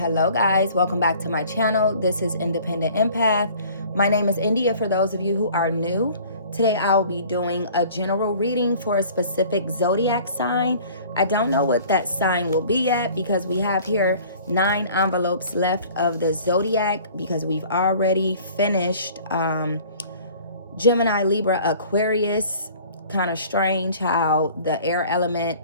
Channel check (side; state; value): both; inverted; correlation -0.49